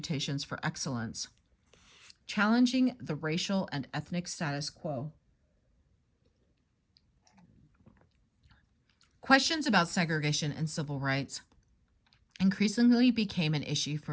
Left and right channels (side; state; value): both; identical; correlation 1.00